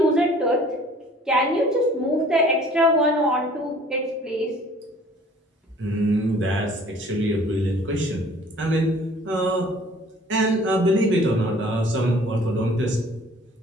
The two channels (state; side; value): normal; both; correlation 0.52